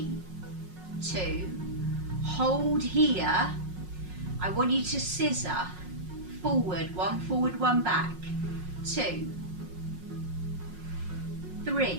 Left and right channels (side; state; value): left; late; 5.5 ms